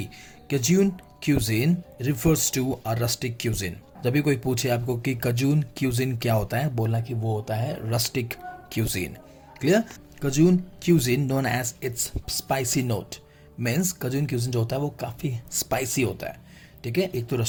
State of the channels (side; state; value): both; identical; correlation 1.00